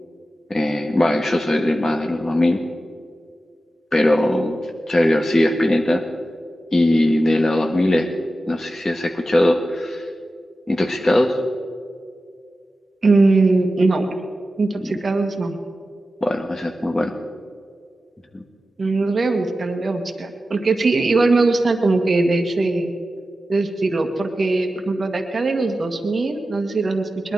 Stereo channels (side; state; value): both; normal; correlation 0.93